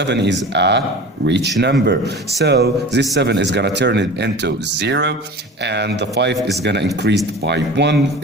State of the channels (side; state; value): both; normal; correlation 0.37